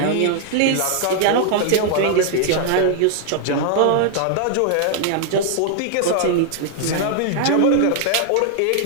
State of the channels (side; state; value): both; different; correlation 0.00